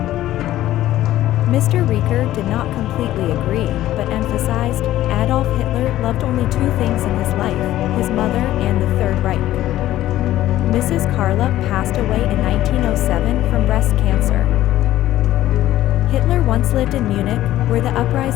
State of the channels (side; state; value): right; quieter; 14.1 dB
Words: Mr. Rieker did not completely agree, but emphasized, Adolf Hitler loved only two things in his life, his mother and the Third Reich. Mrs. Carla passed away in 1907 from breast cancer. Hitler once lived in Munich, where the